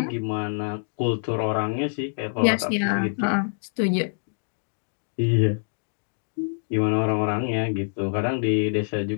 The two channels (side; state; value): right; silent; digital silence